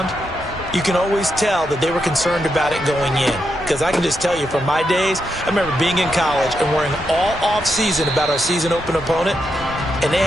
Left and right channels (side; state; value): both; normal; correlation 0.83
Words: you can always tell that they were concerned about it going in. Because I can just tell you from my days, I remember being in college and worrying all off-season about our season open opponent, and they